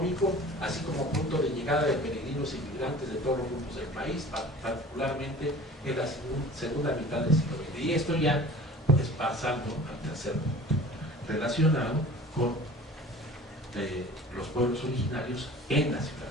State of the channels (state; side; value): normal; both; correlation 0.43